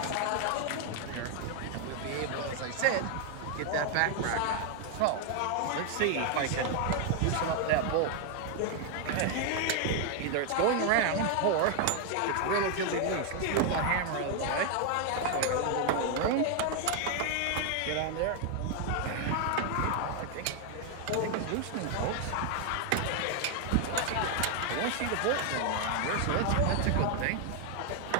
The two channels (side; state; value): both; different; correlation 0.00